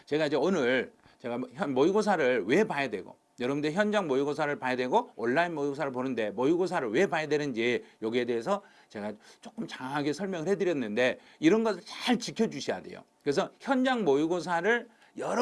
제가 이제 오늘 제가 모의고사를 왜 봐야 되고 여러분들 현장 모의고사를 봐야 되고 온라인 모의고사를 보는데 모의고사를 왜 봐야 되는지 여기에 대해서 제가 조금 장하게 설명을 해드렸는데 이런 것을 잘 지켜주셔야 돼요. 그래서 현장 모의고사를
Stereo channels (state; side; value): identical; both; correlation 1.00